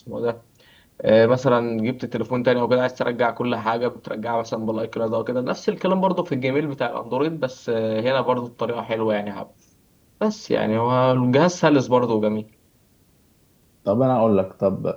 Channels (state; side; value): identical; both; correlation 1.00